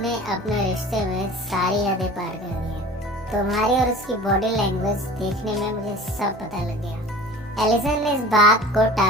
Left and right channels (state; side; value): normal; both; correlation 0.41